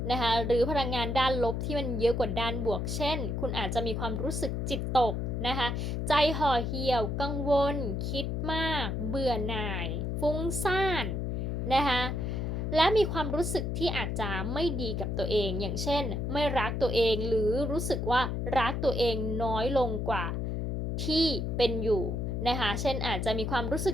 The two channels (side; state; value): left; noise; hum, 1 dB below the sound